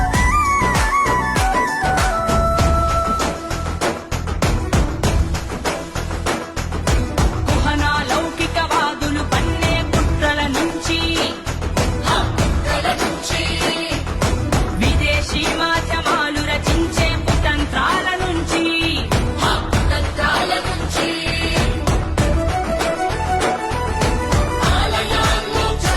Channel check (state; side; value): identical; both; correlation 1.00